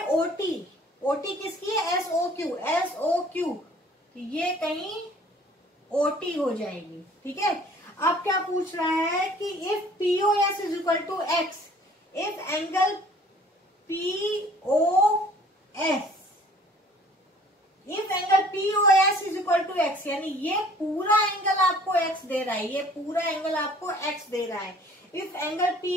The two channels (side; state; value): both; normal; correlation 0.53